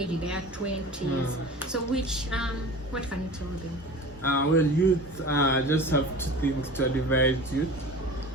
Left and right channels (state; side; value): normal; both; correlation 0.37